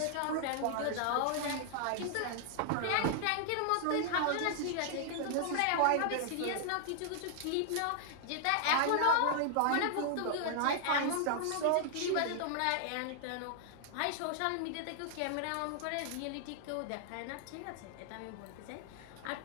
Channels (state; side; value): different; both; correlation 0.00